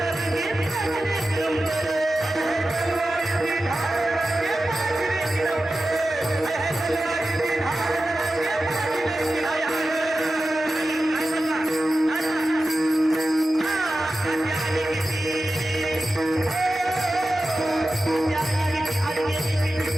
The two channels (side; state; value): both; normal; correlation 0.93